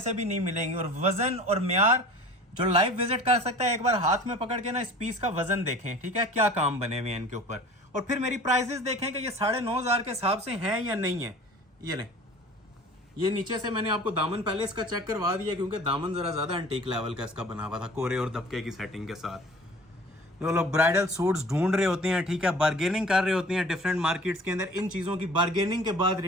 भी नहीं मिलेंगी। और वजन और म्यार जो लाइव विजिट कर सकता है, एक बार हाथ में पकड़ के ना इस पीस का वजन देखें, ठीक है, क्या काम बने हुए हैं इनके ऊपर। और फिर मेरी प्राइसेस देखें कि ये 9,500 के हिसाब से हैं या नहीं है। ये लें, ये नीचे से मैंने आपको दामन पहले इसका चेक करवा दिया क्योंकि दामन जरा ज्यादा एंटीक लेवल का इसका बना हुआ था कोरे और दबके की सेटिंग के साथ। जो लोग ब्राइडल सूट्स ढूंढ रहे होते हैं, ठीक है, बार्गेनिंग कर रहे होते हैं डिफरेंट मार्केट्स के अंदर, इन चीजों की बार्गेनिंग के बाद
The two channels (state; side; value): normal; both; correlation 0.43